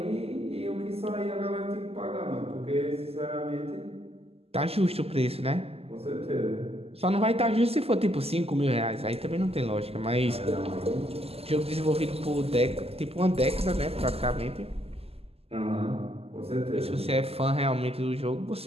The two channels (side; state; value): left; late; 0.29 ms